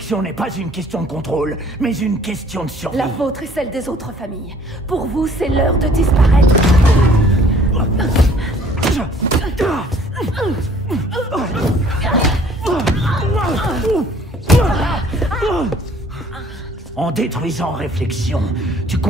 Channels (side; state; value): both; normal; correlation 0.56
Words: n'est pas une question de contrôle, mais une question de survie. La vôtre et celle des autres familles. Pour vous, c'est l'heure de disparaître. En détruisant Réflexion, tu